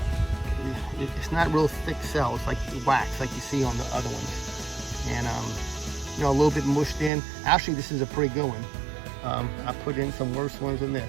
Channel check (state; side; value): drops out; left; at 7.1 s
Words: it's not real thick cells like wax, like you see on the other ones. And, you know, a little bit mushed in. Actually, this is a pretty good one. I put in some worse ones than